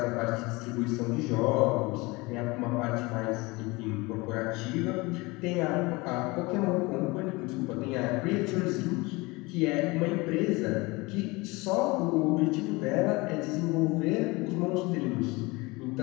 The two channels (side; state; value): right; quieter; 24.0 dB